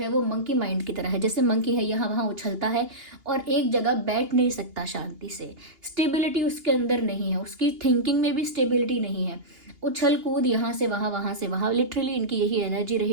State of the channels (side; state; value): left; late; 2.8 ms